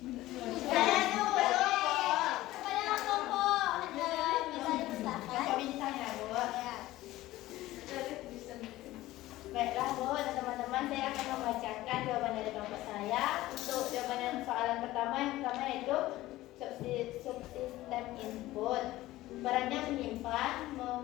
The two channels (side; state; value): right; quieter; 16.7 dB